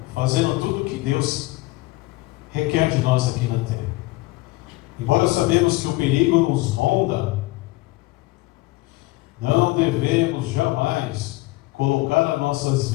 fazendo tudo que Deus requer de nós aqui na terra. Embora sabemos que o perigo nos ronda, não devemos jamais colocar as nossas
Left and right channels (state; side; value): quieter; right; 20.5 dB